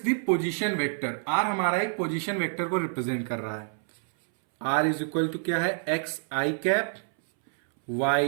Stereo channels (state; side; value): silent; left; 60 dB below the other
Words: the position vector, r हमारा एक पोजीशन वेक्टर को रिप्रेजेंट कर रहा है। आर इज इक्वल टू क्या है? X i cap